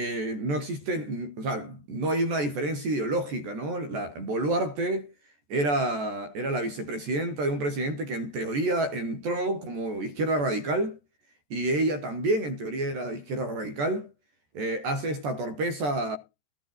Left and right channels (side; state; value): left; late; 14 ms